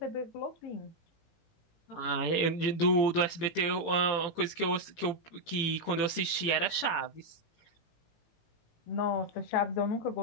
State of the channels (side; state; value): right; late; 17 ms